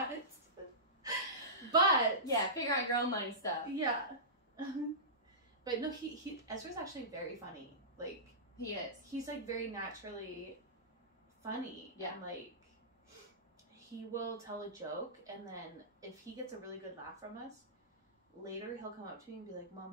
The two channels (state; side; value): normal; both; correlation -0.20